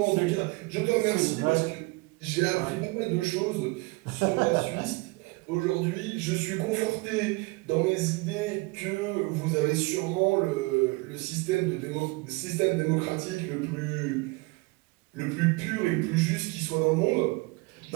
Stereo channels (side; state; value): left; quieter; 25.2 dB